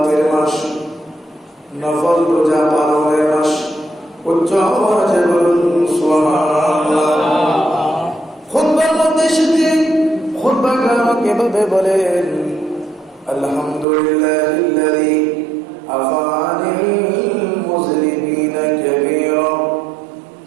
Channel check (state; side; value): drops out; left; at 13.9 s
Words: মাস, নফল রোজা পালনের মাস। উচ্চ আওয়াজে বলুন সুবহানাল্লাহ। খুতবার মধ্যে এসে খুতবাগার কিভাবে বলেন আলহামদুলিল্লাহিল্লাযী আফানিল মুযলিমিনা কাবীরা